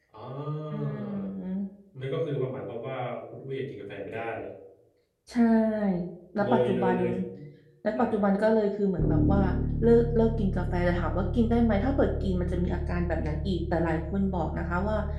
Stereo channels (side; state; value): both; identical; correlation 1.00